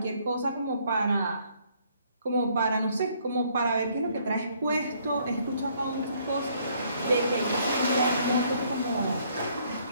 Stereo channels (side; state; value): both; inverted; correlation -0.66